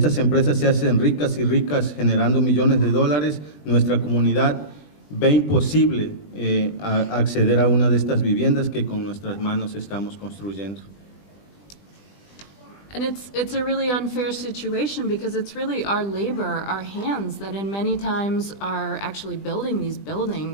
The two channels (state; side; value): late; right; 20 ms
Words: empresas se hacen ricas y ricas generando millones de dólares, nuestra comunidad ve imposible acceder a una de estas viviendas que con nuestras manos estamos construyendo. And it's a really unfair situation because it's really our labor, our hands, that in many times are actually building these